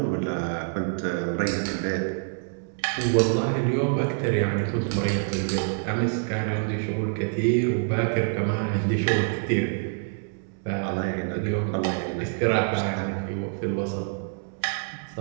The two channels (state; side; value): silent; left; 57 dB below the other